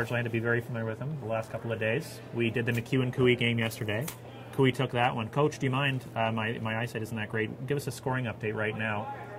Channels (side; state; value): both; identical; correlation 1.00